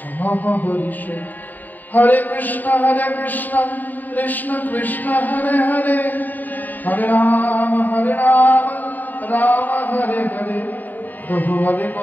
হরিষে। হরে কৃষ্ণ কৃষ্ণ কৃষ্ণ হরে হরে, হরে রাম রাম হরে হরে। প্রভু বলে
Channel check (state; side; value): late; right; 0.086 ms